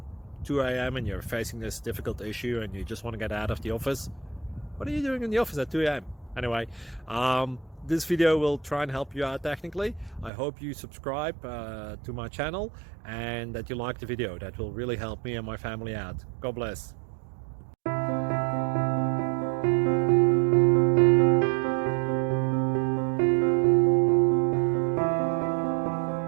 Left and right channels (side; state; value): left; drops out; at 10.3 s